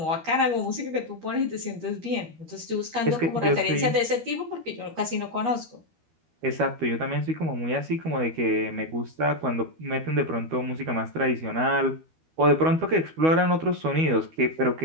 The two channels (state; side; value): late; left; 12 ms